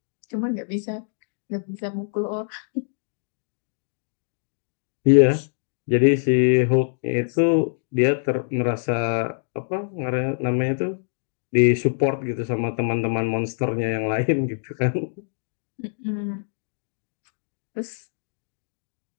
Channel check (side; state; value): right; silent; digital silence